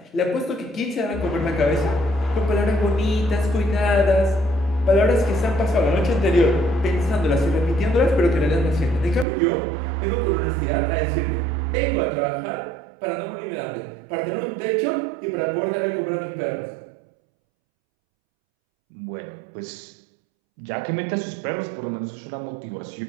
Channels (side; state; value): left; drops out; at 9.2 s